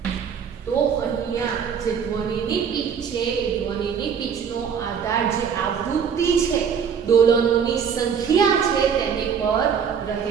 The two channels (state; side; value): quieter; left; 7.1 dB